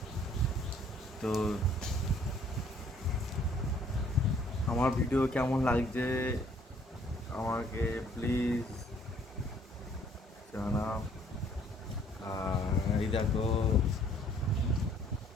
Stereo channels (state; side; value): normal; both; correlation 0.61